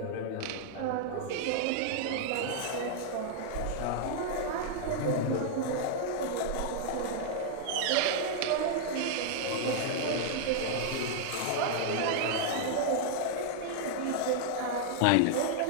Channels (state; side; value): different; both; correlation -0.01